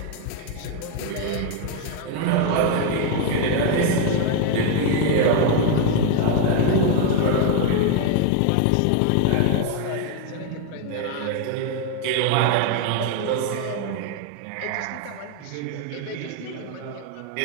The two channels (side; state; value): both; different; correlation 0.01